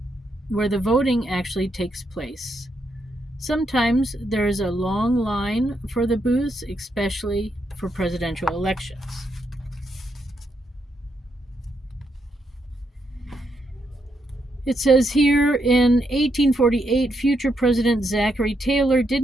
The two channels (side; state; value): both; normal; correlation 0.79